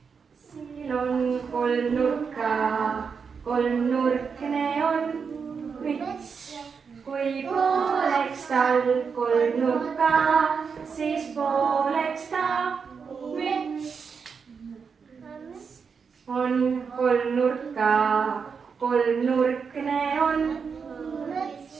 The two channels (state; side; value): quieter; left; 5.9 dB